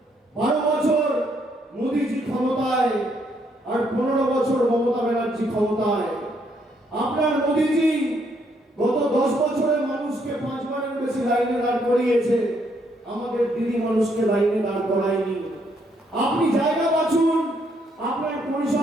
12 বছর মোদীজি ক্ষমতায় আর 15 বছর মমতা ব্যানার্জি ক্ষমতায়। আপনার মোদীজি গত 10 বছরে মানুষকে 5 বারের বেশি লাইনে দাঁড় করিয়েছে, আমাদের দিদি মানুষকে লাইনে দাঁড় করায়নি। আপনি জায়গা বাছুন, আপনার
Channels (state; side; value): normal; both; correlation 0.72